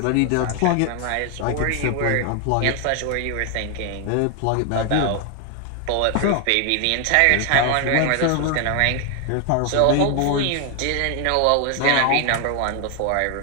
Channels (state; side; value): different; both; correlation 0.00